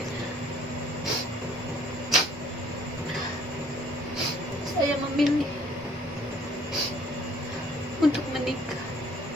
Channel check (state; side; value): normal; both; correlation 0.60